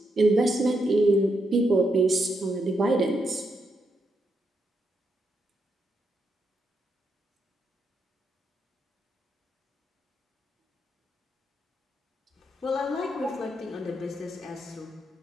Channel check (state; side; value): normal; both; correlation 0.81